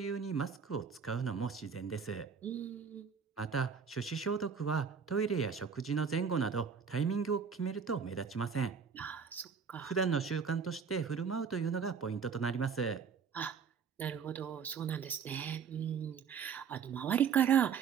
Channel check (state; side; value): quieter; left; 6.4 dB